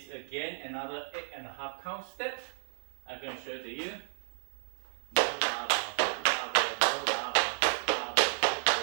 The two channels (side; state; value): left; silent; digital silence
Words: again another 8.5 count step. I'm going to show it to you.